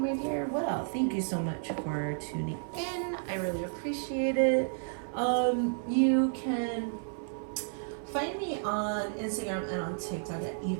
dear. Well, thank you so much for tuning in. I really appreciate it. You can find me on Instagram and on TikTok at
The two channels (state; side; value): silent; left; 57 dB below the other